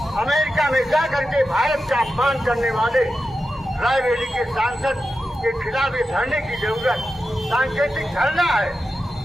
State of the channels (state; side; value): normal; both; correlation 0.91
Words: अमेरिका में जाकर के भारत का अपमान करने वाले रायबरेली के सांसद के खिलाफ धरने की जरूरत सांकेतिक धरना है।